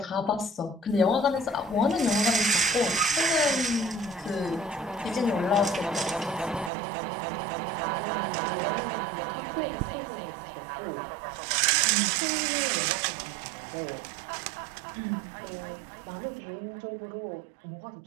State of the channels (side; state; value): left; drops out; at 6.7 s